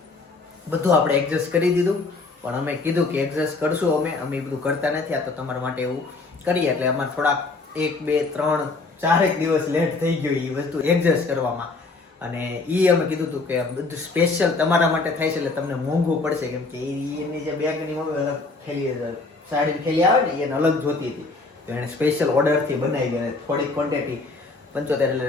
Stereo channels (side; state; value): right; quieter; 3.7 dB